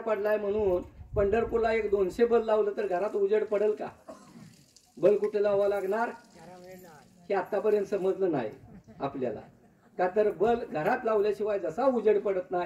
पडलाय म्हणून पंढरपूरला एक 200 बल्ब लावलं तर घरात उजेड पडेल का? बल्ब कुठे लावावं लागणार हे आतापर्यंत समजलं नाही आपल्याला. का तर बल्ब घरात लावल्याशिवाय जसा उजेड पडत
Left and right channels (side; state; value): both; identical; correlation 1.00